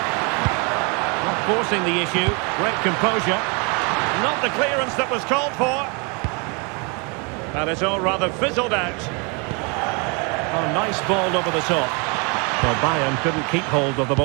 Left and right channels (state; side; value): quieter; left; 32.4 dB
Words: Forcing the issue, great composure. Not the clearance that was called for. And it's all rather fizzled out. Oh, nice ball over the top. Well, Bayern couldn't keep hold of the